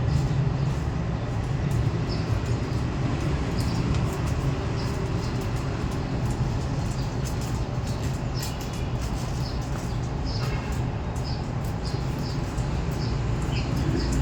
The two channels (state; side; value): identical; both; correlation 1.00